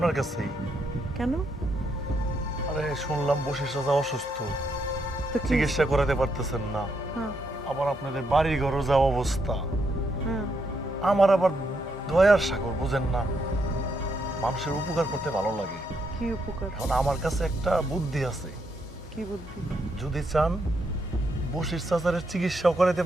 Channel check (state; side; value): normal; both; correlation 0.78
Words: কাছেই। কেন? আরে শুনলাম বসির চাচা অসুস্থ, তো কি? চিকিৎসা করাতে পারতেছেন না। হ্যাঁ, আবার আপনাদের বাড়ি ঘরও যা অবস্থা। হ্যাঁ। আমার আবার দয়ার সাগর, বুঝেন না, মানুষের উপকার করতে ভালো লাগে। কি উপকার? এখন আমার কাছে একটা বুদ্ধি আছে। কি বুদ্ধি? যদি চান বসির চাচারের চিকিৎসাও করাতে